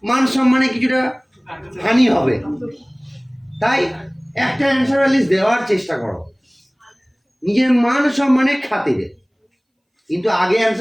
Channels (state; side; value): identical; both; correlation 1.00